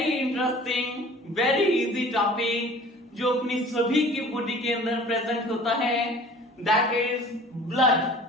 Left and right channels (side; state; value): both; normal; correlation 0.46